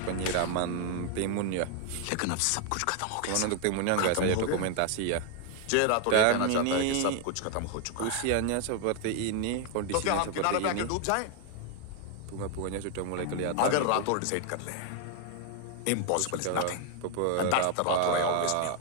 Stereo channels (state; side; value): different; both; correlation 0.01